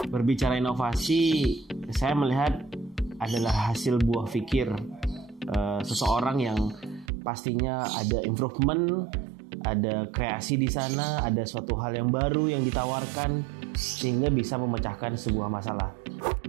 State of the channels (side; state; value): left; drops out; at 7.1 s